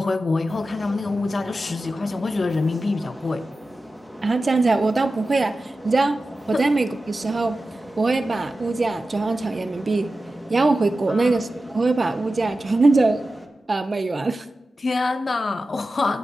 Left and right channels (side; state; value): both; normal; correlation 0.93